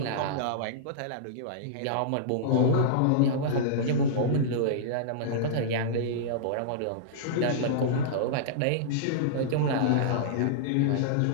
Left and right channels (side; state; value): both; different; correlation -0.02